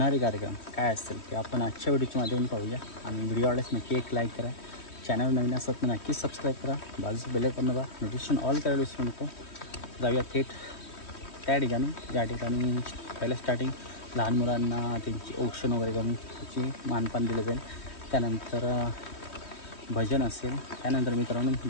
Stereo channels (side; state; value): right; late; 3.1 ms